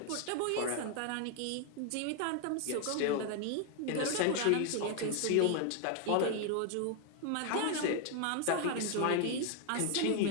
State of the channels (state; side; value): different; both; correlation 0.00